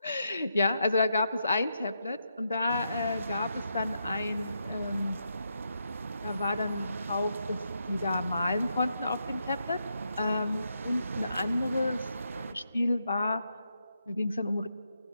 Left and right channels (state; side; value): inverted; both; correlation -0.82